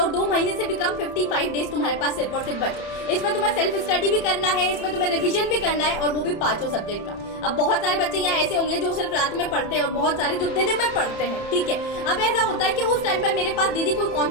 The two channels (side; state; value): right; late; 30 ms